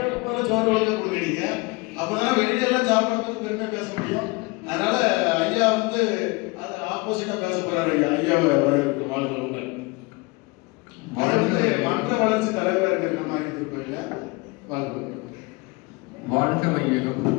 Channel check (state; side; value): quieter; right; 26.1 dB